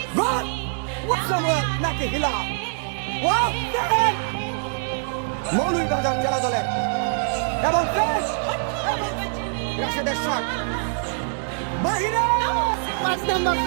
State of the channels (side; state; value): left; silent; 63 dB below the other